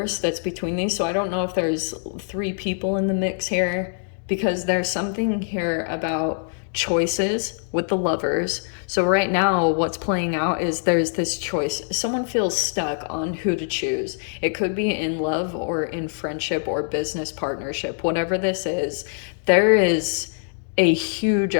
that's between these. So I don't know if there's 3 people in the mix here, because there's something here about choices with the Lovers. So right now what's playing out is there's this choice. Someone feels stuck on who to choose. It could be in love or in friendship or business partnership. Whatever this is, there is a huge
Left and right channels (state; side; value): silent; right; digital silence